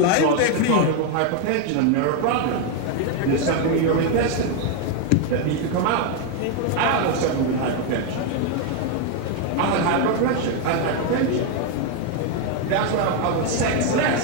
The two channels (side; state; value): both; different; correlation 0.01